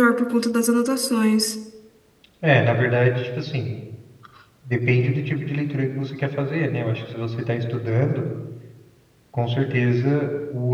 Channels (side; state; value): both; identical; correlation 1.00